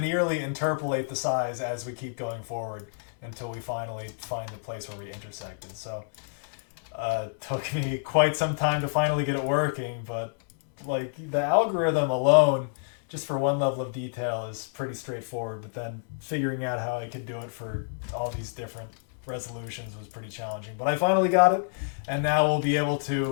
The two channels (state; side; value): silent; right; digital silence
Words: interpolate the size as we keep going forward until we finally find the place where we intersected. So took me quite some time to finally get it working, but like the algorithm alone, just for one level of detail, is pretty straightforward. But then figuring out how I could do it for all these different resolutions was pretty challenging. But I finally got it, and now we'll be able